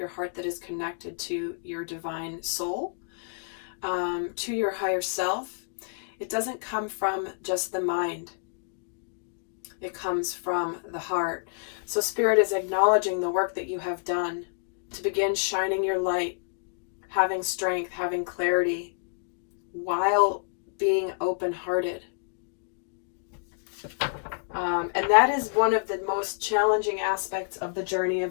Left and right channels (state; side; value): silent; right; digital silence